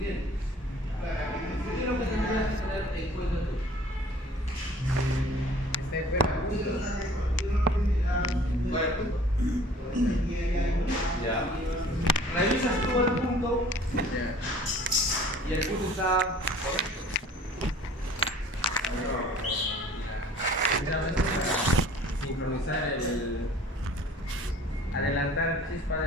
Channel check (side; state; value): both; normal; correlation 0.50